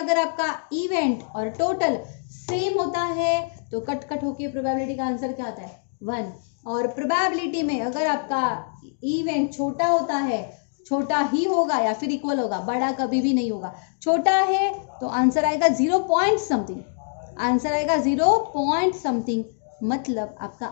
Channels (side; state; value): right; silent; digital silence